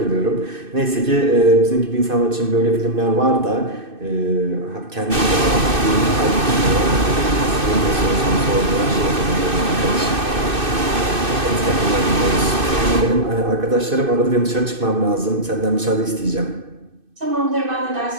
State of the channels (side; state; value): left; late; 2.6 ms